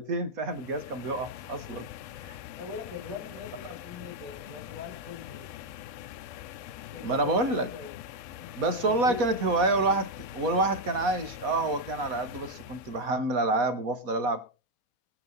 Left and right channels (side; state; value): left; late; 4.2 ms